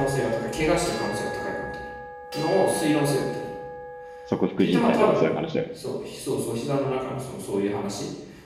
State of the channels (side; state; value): both; identical; correlation 1.00